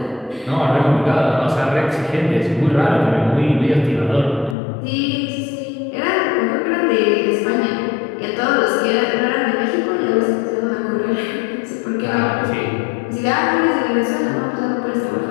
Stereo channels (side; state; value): right; drops out; at 4.5 s